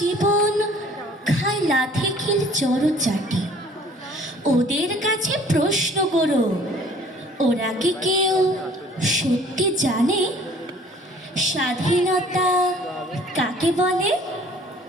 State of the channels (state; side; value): normal; both; correlation 0.54